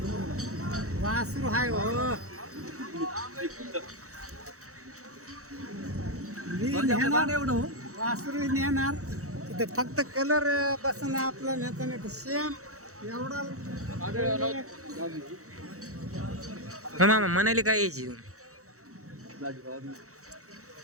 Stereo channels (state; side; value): late; left; 0.65 ms